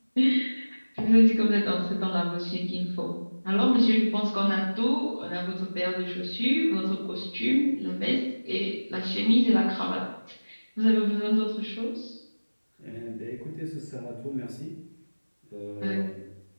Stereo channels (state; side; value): inverted; both; correlation -1.00